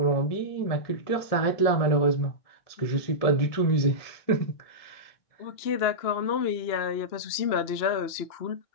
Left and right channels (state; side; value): late; right; 2.9 ms